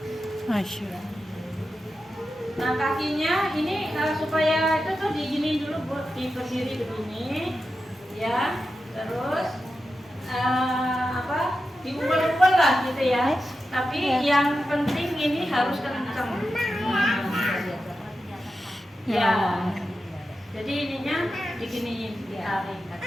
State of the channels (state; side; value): normal; both; correlation 0.90